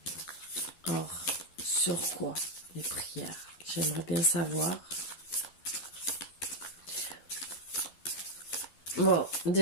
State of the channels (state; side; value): late; right; 12 ms